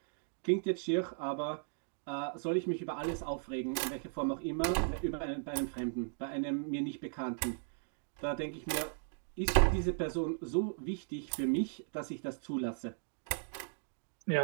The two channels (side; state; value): left; silent; digital silence